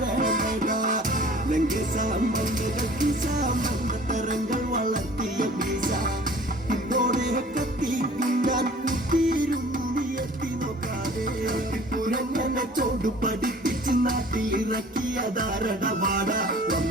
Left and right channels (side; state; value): both; normal; correlation 0.48